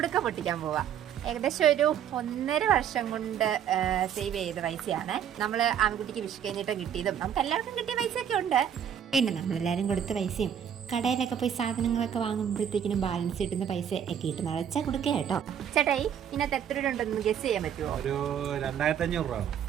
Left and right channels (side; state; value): left; quieter; 9.0 dB